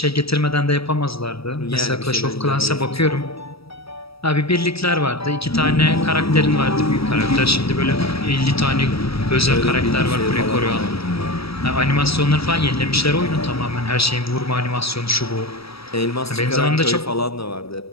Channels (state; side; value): late; right; 0.76 ms